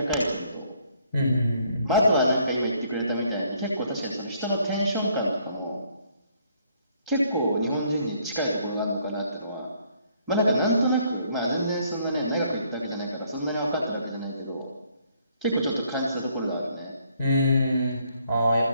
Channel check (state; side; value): inverted; both; correlation -0.66